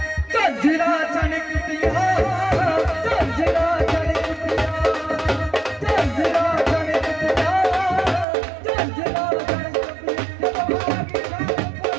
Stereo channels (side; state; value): left; drops out; at 8.2 s